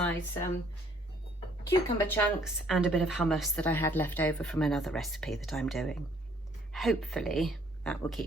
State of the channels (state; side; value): normal; both; correlation 0.63